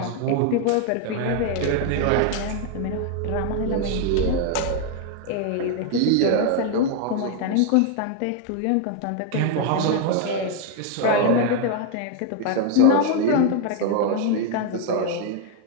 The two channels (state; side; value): different; both; correlation 0.00